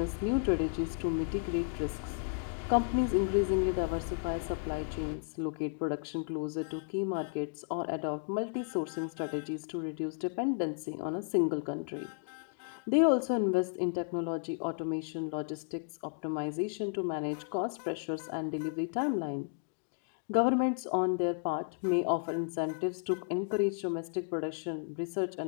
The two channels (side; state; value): right; silent; digital silence